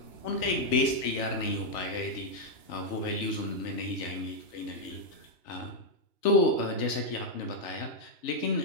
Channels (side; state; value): right; late; 3.4 ms